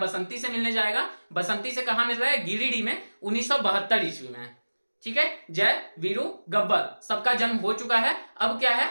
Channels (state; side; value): inverted; both; correlation -1.00